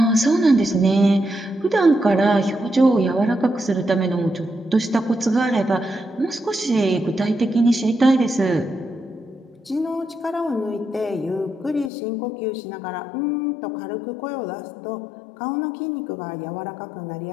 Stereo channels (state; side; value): drops out; right; at 11.9 s